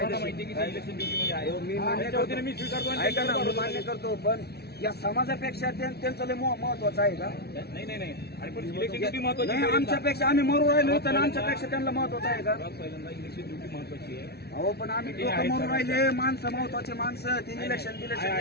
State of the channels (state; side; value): late; right; 0.47 ms